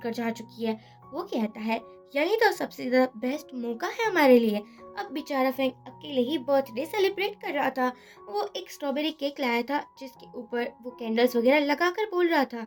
जा चुकी है। वो कहता है, यही तो सबसे ज्यादा बेस्ट मौका है हमारे लिए। अब बेचारा फेंग अकेले ही बर्थडे सेलिब्रेट कर रहा था। वो एक स्ट्रॉबेरी केक लाया था जिसके ऊपर वो कैंडल्स वगैरह लगाकर बोल रहा था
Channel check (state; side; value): identical; both; correlation 1.00